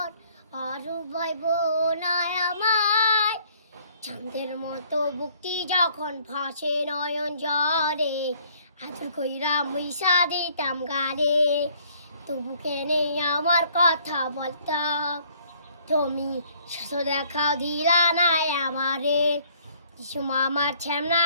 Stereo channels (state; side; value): inverted; both; correlation -0.61